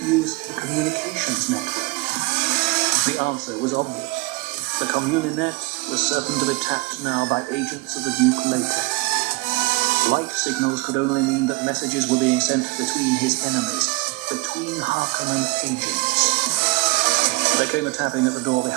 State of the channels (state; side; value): quieter; left; 23.2 dB